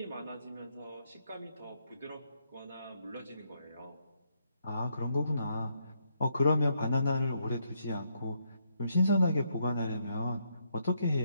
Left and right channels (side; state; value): both; inverted; correlation -0.76